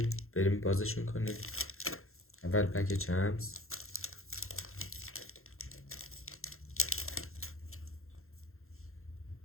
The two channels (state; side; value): late; right; 0.62 ms